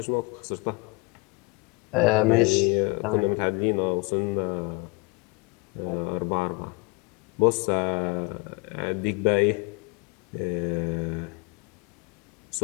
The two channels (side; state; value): right; quieter; 27.7 dB